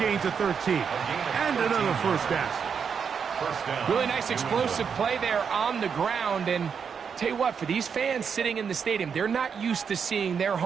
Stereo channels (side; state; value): left; quieter; 6.6 dB